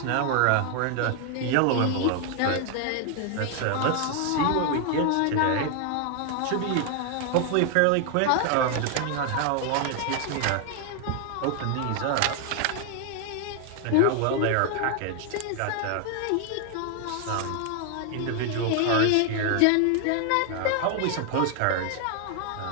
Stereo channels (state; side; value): different; both; correlation 0.00